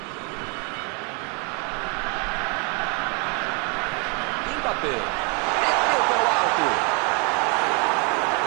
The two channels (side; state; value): left; quieter; 33.8 dB